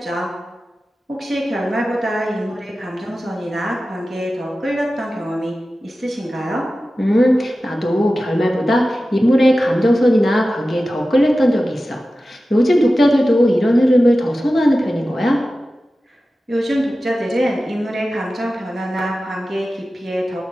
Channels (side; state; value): both; normal; correlation 0.94